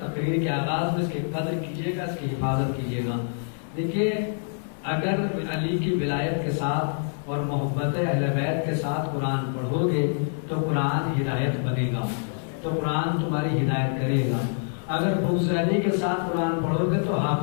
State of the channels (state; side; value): silent; right; 61 dB below the other